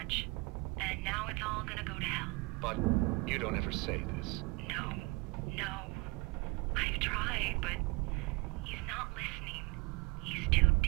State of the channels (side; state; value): left; quieter; 25.4 dB